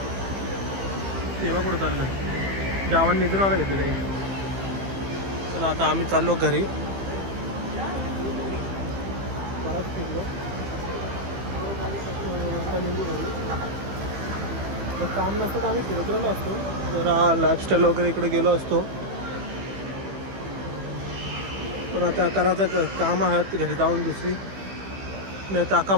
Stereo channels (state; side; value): late; left; 15 ms